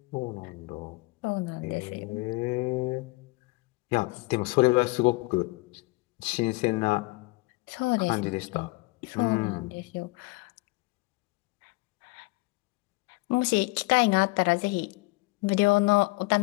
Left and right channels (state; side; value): quieter; right; 23.7 dB